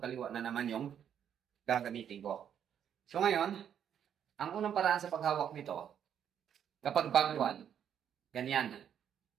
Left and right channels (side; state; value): left; quieter; 9.0 dB